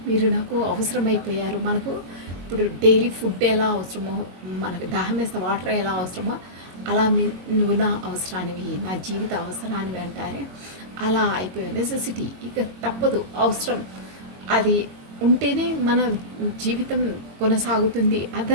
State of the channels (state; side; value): late; left; 22 ms